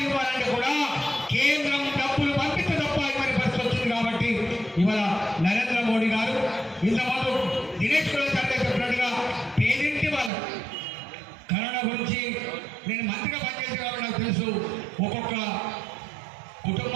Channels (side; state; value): left; drops out; at 10.3 s